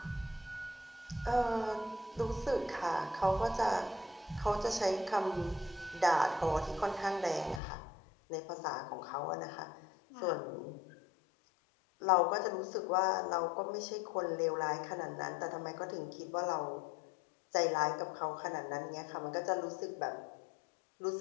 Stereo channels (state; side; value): drops out; right; at 7.6 s